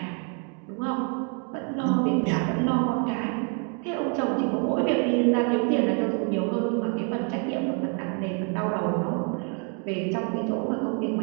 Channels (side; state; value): left; quieter; 39.0 dB